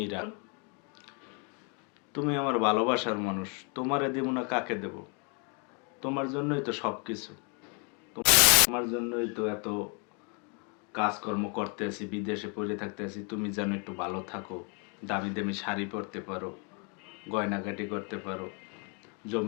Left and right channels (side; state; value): right; quieter; 35.6 dB